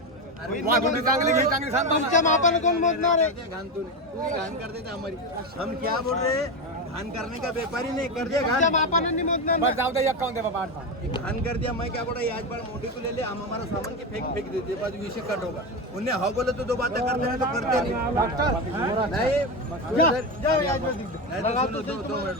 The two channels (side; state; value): both; normal; correlation 0.16